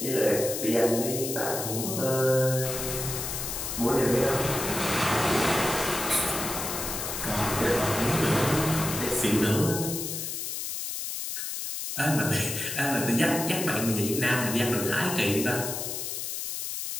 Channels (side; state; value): left; noise; hiss, 4 dB below the sound